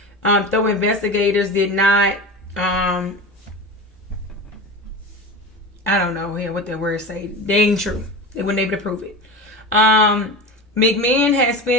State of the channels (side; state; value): both; normal; correlation 0.28